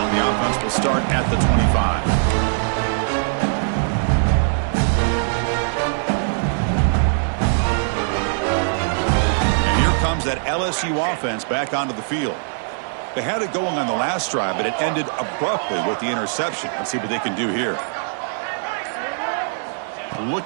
The offense will start at the 25. And here comes that LSU offense back onto the field. They had it going on the last drive, but it ended abruptly with the interception. Let's see what they can do here.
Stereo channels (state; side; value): silent; left; 65 dB below the other